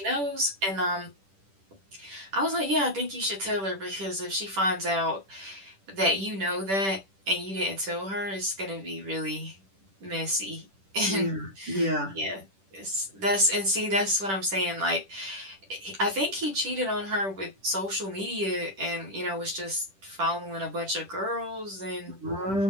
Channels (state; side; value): late; left; 10 ms